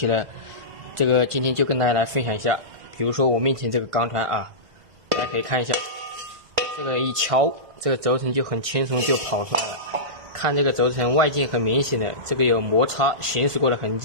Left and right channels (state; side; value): late; left; 1.5 ms